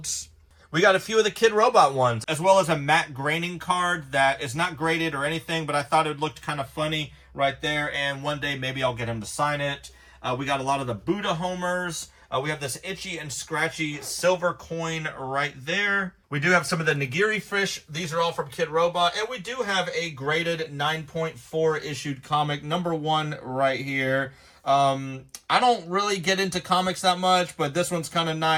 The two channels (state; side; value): identical; both; correlation 1.00